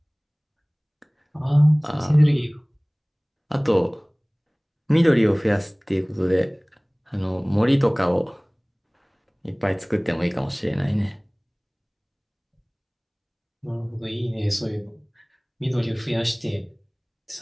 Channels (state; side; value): identical; both; correlation 1.00